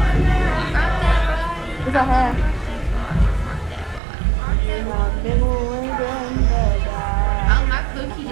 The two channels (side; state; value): left; drops out; at 4.0 s